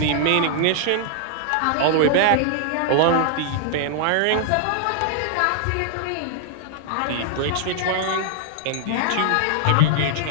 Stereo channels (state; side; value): different; both; correlation -0.01